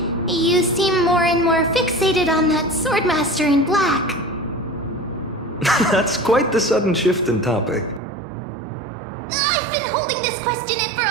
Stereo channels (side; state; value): left; drops out; at 8.0 s